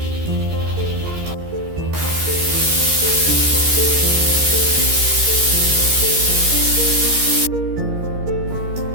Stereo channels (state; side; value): late; left; 13 ms